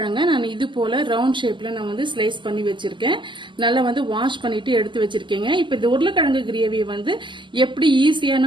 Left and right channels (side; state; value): left; late; 0.24 ms